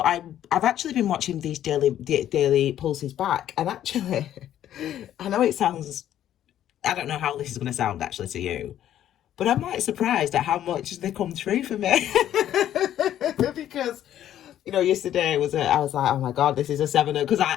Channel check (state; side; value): quieter; right; 11.4 dB